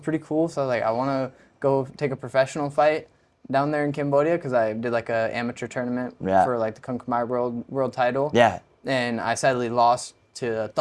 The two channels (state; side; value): identical; both; correlation 1.00